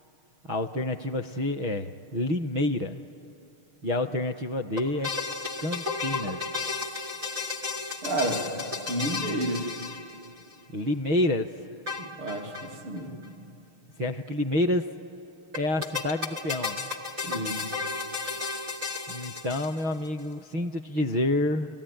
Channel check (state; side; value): late; left; 6.5 ms